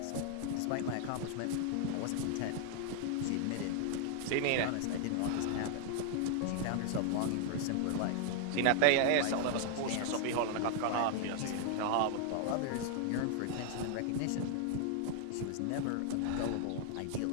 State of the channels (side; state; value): both; different; correlation 0.00